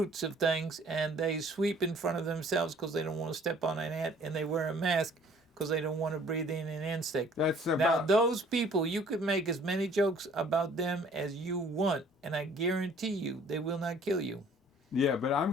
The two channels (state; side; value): normal; both; correlation 0.55